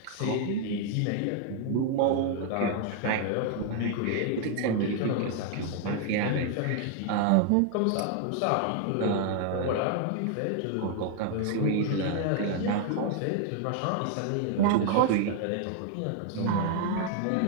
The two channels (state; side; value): different; both; correlation 0.00